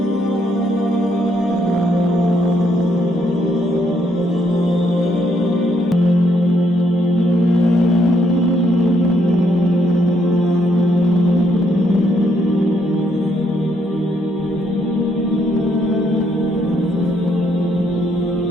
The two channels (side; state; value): both; normal; correlation 0.73